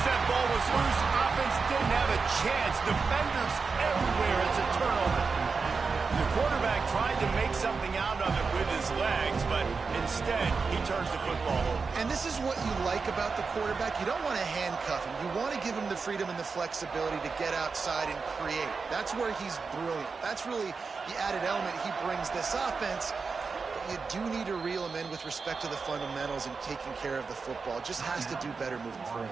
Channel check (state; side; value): quieter; left; 4.8 dB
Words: that ball was loose, offense didn't have a chance. Defenders everywhere. It's a turnover. The quarterback tried to make something out of it with his legs, but instead he turns the football over. And this is what you like about the quarterback. You don't want to handcuff him. You want to give him the freedom and the flexibility to get outside and create. That's where he's brilliant. That's really the added element he brings this offense. You do need to reel him in with respect to the fundamentals and taking care of the football. Just has to do better moving forward.